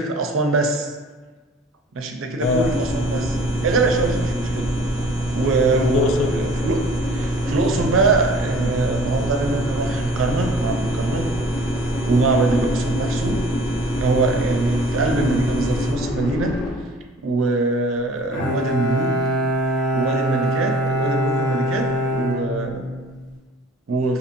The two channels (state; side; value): normal; both; correlation 0.49